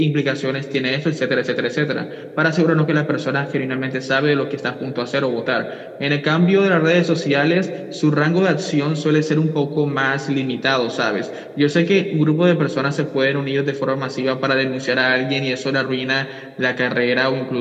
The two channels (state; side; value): identical; both; correlation 1.00